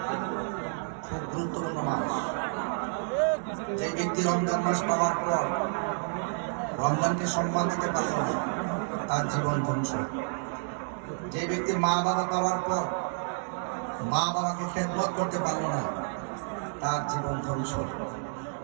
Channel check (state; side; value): silent; left; 58 dB below the other